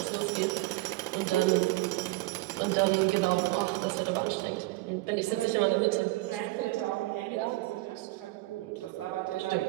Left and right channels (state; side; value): quieter; left; 20.6 dB